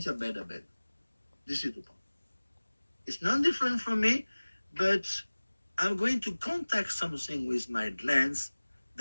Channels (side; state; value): both; inverted; correlation -1.00